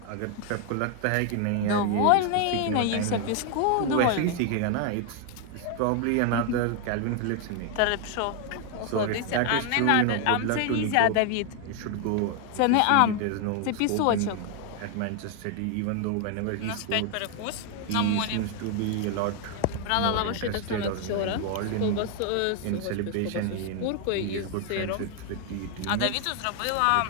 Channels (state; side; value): different; both; correlation 0.01